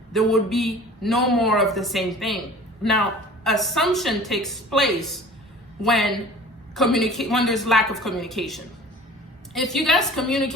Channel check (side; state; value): both; normal; correlation 0.44